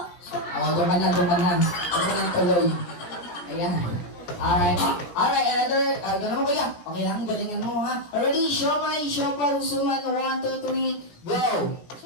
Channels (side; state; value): right; late; 17 ms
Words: Doon ka na. Doon ka na tuloy. Ayan. Alright. Alright, another. Doon mo kuya. Okay lang, galingan mo ha. Ready? Siomay, siopaw, suman. 1, 2, 3, go!